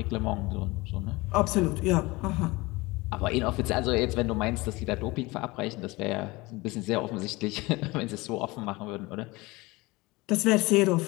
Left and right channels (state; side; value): quieter; right; 22.6 dB